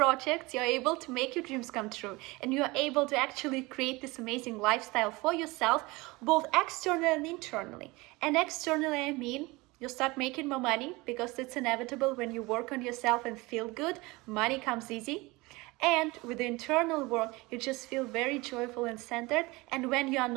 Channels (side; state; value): left; quieter; 22.9 dB